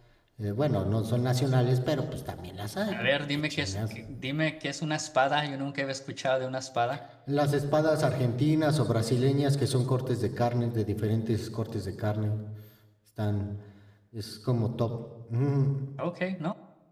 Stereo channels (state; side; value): identical; both; correlation 1.00